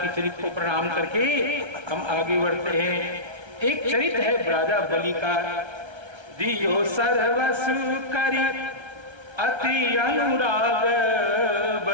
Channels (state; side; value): late; left; 1.3 ms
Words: चरित्र को प्रणाम करके हम आगे बढ़ते हैं। एक चरित्र है राजा बलि का। दियो सर्वसु करी अति अनुराग